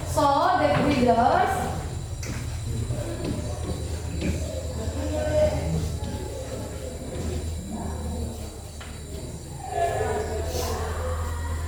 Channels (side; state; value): both; identical; correlation 1.00